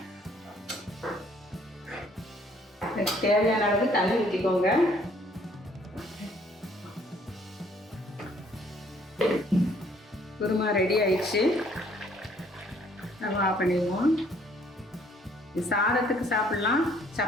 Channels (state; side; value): normal; both; correlation 0.62